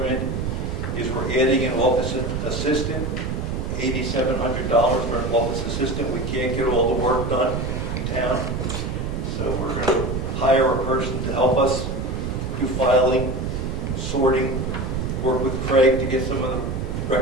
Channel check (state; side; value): noise; right; rumble, 3 dB below the sound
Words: is we're adding an office assistant, $8,700 for an office assistant. We can't get all the work done in town, so we're going to hire a person to help us do filing, sorting, work with Craig to get some of the